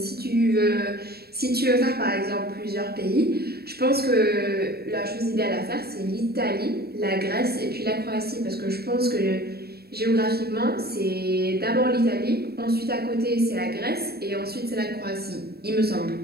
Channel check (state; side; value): late; left; 0.46 ms